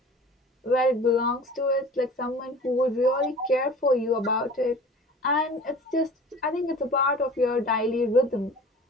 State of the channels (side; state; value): both; normal; correlation 0.42